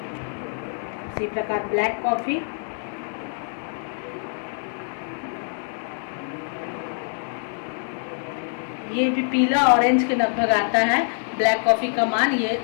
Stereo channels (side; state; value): right; silent; 62 dB below the other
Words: इसी प्रकार ब्लैक कॉफ़ी, ये भी पीला ऑरेंज के लगभग आता है। ब्लैक कॉफ़ी का मान ये